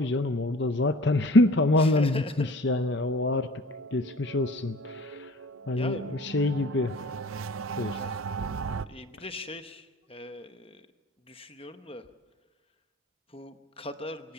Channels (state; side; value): normal; both; correlation 0.45